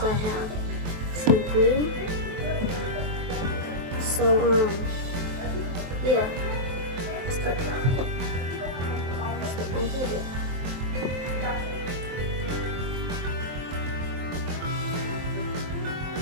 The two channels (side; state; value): left; late; 23 ms